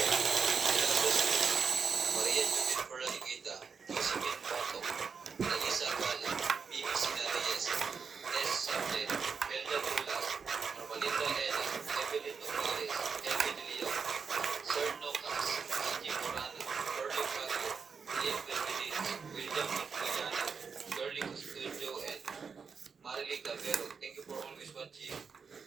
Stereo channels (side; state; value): left; quieter; 5.7 dB